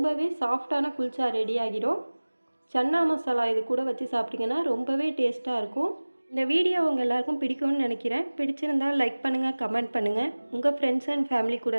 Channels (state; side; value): inverted; both; correlation -1.00